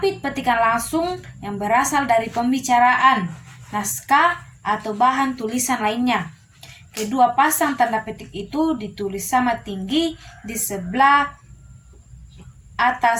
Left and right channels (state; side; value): identical; both; correlation 1.00